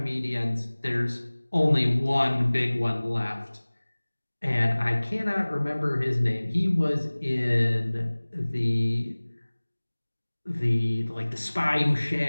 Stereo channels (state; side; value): inverted; both; correlation -1.00